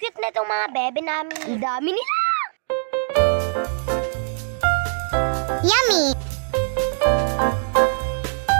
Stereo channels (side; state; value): left; silent; digital silence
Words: na itong mga bebe namin. Ang dami nila! Yummy!